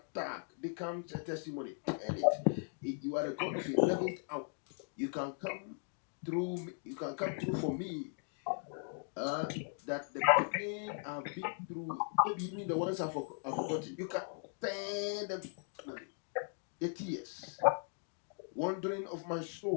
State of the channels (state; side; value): silent; right; 52 dB below the other